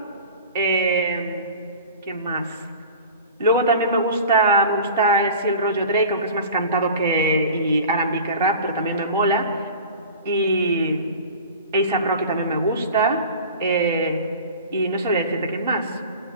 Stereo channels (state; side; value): inverted; both; correlation -0.39